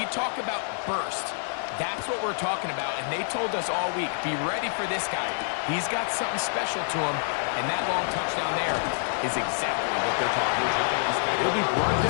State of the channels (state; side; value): silent; right; digital silence